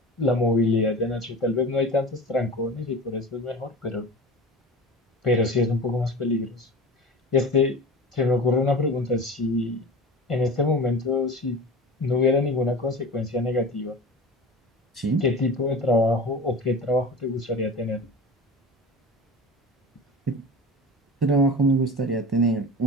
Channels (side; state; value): both; normal; correlation 0.33